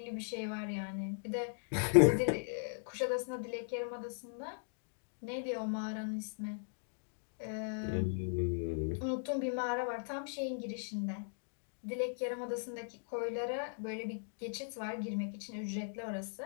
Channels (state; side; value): silent; right; digital silence